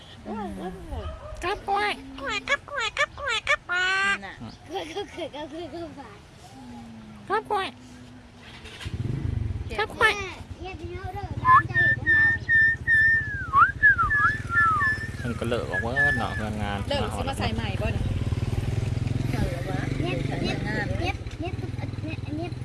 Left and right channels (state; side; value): identical; both; correlation 1.00